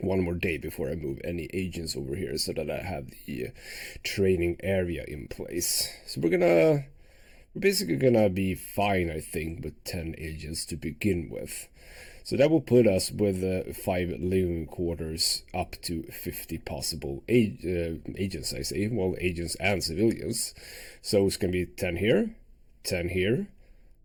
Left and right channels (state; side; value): identical; both; correlation 1.00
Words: day before I move any agents over here so that I have the training area in place. So we're basically gonna be fine, I think, with 10 agents to begin with. So that will put us with 5 living quarters up to 50 possible agents, I say. Well, agents and civilians. So it's gonna be 10 here, 10 here.